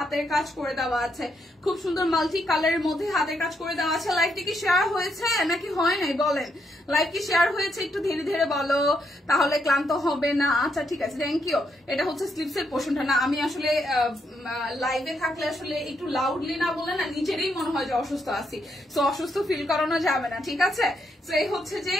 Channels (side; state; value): both; normal; correlation 0.78